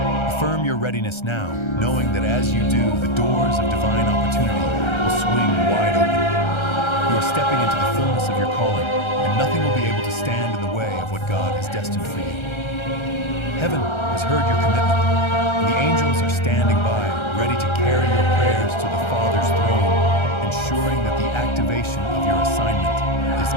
Affirm your readiness now, knowing that as you do, the doors of divine opportunity will swing wide open. You are stepping into the fullness of your calling, and nothing will be able to stand in the way of what God has destined for you. Heaven has heard your commitment, and the angels are standing by, ready to carry your prayers to the Father's throne, ensuring that the activation of your assignment is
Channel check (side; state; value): right; late; 1.3 ms